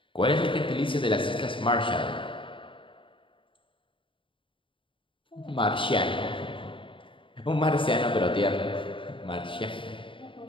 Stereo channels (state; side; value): late; right; 0.25 ms